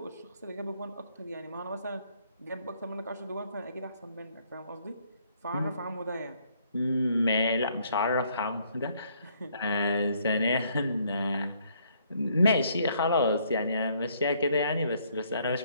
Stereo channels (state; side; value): inverted; both; correlation -0.67